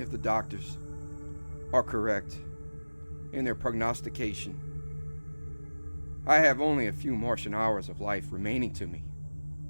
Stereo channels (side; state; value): both; inverted; correlation -1.00